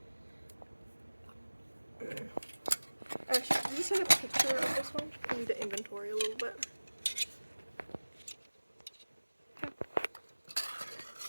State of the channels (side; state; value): both; inverted; correlation -1.00